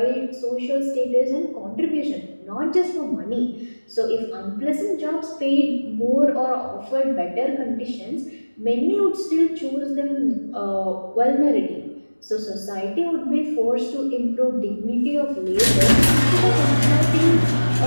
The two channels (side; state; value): both; inverted; correlation -1.00